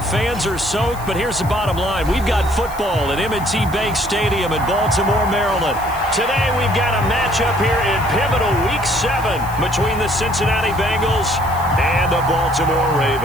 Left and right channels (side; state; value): left; noise; hiss, 18 dB below the sound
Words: fans are soaked. But here's the bottom line. We've got football at M&T Bank Stadium in Baltimore, Maryland. Today we've got a matchup here in pivotal Week 7 between the Cincinnati Bengals and the Baltimore